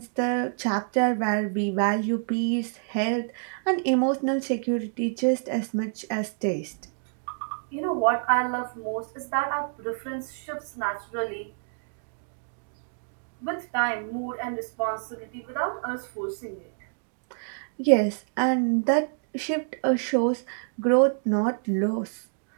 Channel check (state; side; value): silent; left; 60 dB below the other